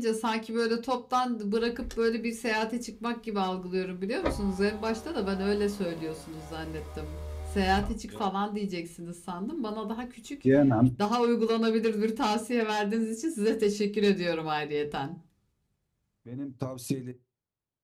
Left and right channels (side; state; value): both; identical; correlation 1.00